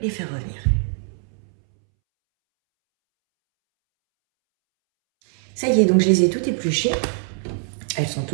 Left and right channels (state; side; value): silent; left; 64 dB below the other